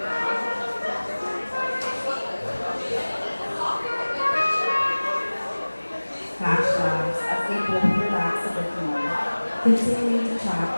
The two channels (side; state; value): both; inverted; correlation -1.00